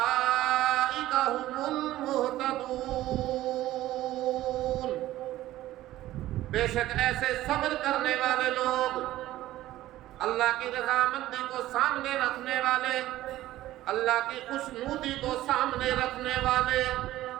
هم المہتدون، بے شک ایسے صبر کرنے والے لوگ، اللہ کی رضامندی کو سامنے رکھنے والے، اللہ کی خوشنودی کو سامنے رکھنے والے،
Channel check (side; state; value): left; quieter; 15.0 dB